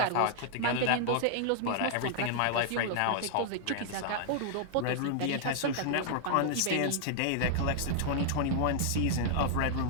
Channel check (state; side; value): different; both; correlation -0.01